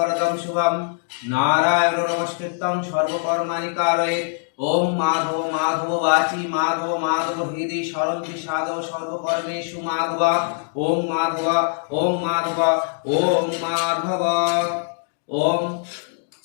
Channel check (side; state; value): right; silent; digital silence